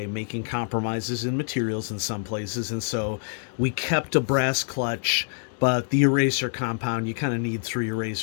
making compromises in materials in some places, and so we kept a brass clutch, but the eraser compound, you kind of need 3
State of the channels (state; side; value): silent; right; digital silence